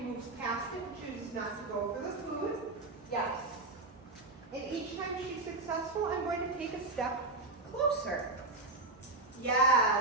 past it and chooses not to go for the food. Yes. And each time she's successful, I'm going to take a step closer.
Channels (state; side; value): quieter; left; 3.1 dB